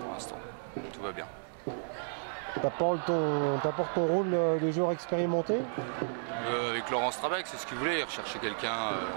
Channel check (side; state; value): left; silent; digital silence